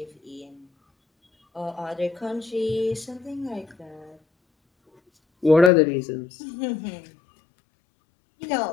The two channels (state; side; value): drops out; right; at 5.7 s